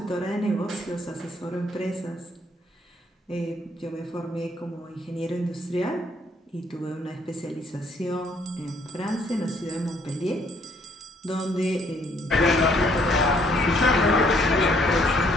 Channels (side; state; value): both; normal; correlation 0.66